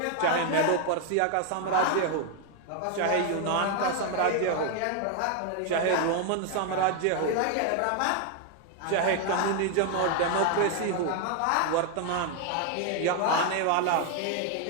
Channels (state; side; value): different; both; correlation 0.01